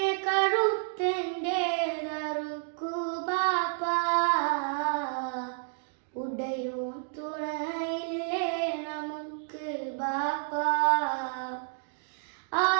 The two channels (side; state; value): left; silent; 58 dB below the other